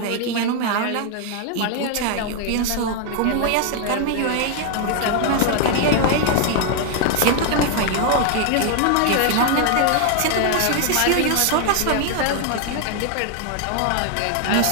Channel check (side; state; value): both; different; correlation 0.00